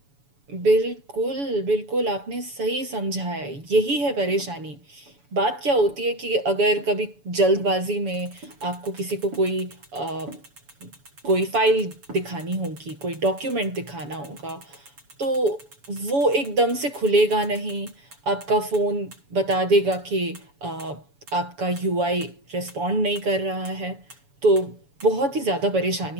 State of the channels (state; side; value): late; left; 7.1 ms